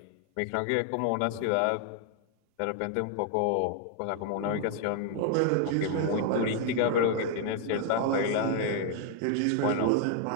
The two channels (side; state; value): both; different; correlation 0.00